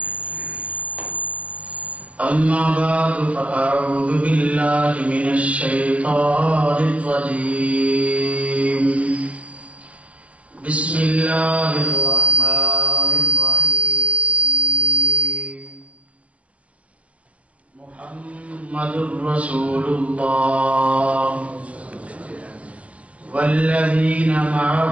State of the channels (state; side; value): late; left; 0.066 ms